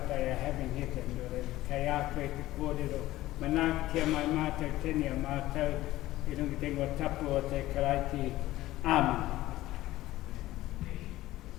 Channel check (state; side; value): quieter; right; 16.2 dB